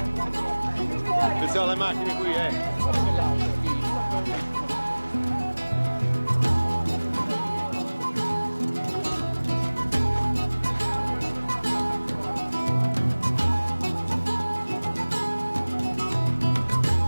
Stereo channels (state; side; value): inverted; both; correlation -1.00